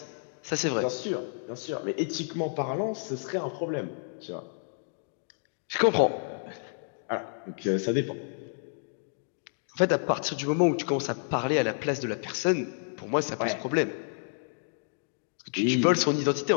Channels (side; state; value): right; silent; digital silence